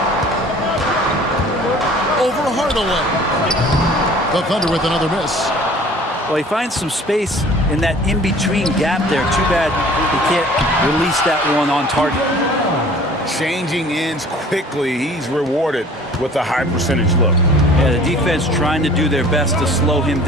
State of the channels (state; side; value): normal; both; correlation 0.49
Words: Over Hardaway. The Thunder with another miss. Well, he finds some space in that in-between gap there. Too bad he can't release that one on target. Changing ends quickly. He's rewarded with a high percentage look. Yeah, the defense trying to do their best to slow him